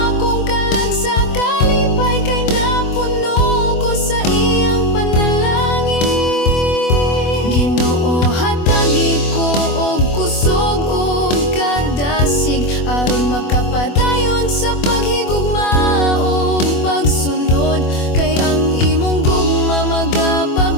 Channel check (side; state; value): right; late; 24 ms